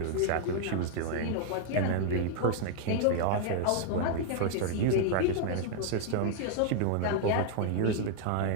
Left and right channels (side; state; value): both; different; correlation 0.00